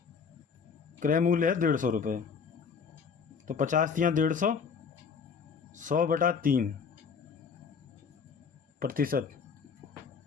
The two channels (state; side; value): quieter; right; 6.0 dB